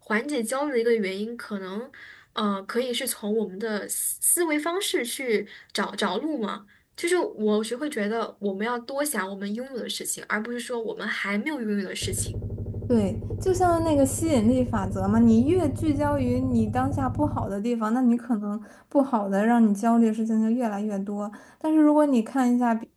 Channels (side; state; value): both; identical; correlation 1.00